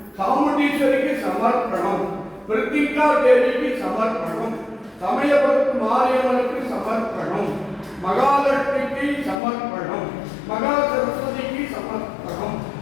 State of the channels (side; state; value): right; drops out; at 9.3 s